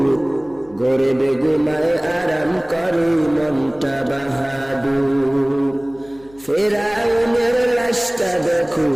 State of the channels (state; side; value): noise; left; hum, 26 dB below the sound